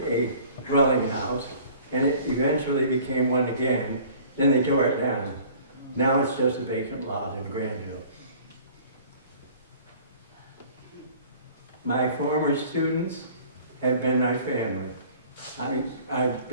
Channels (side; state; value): both; inverted; correlation -0.49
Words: a dwelling house, and it eventually became one again. Then they tore it down. Now it's just a vacant lot in Granville. My former students have been my family. I've